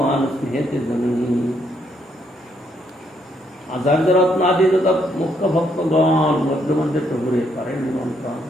স্নেহেতে জননী। আচার্য রত্নাদি মুখ্য ভক্তগণ মধ্যে মধ্যে প্রভুরে করেন নিমন্ত্রণ।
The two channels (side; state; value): both; normal; correlation 0.73